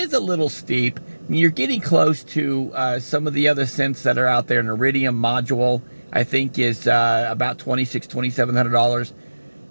a little steep. I mean, you're getting close to some of the other synths that are out there. An Iridium module, I think, is about $2,700.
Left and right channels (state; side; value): inverted; both; correlation -1.00